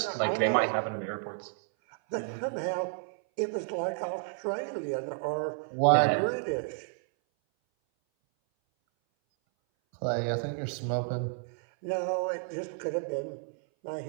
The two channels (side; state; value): left; silent; 57 dB below the other